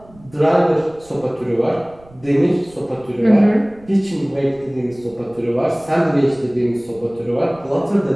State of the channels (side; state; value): right; noise; rumble, 25 dB below the sound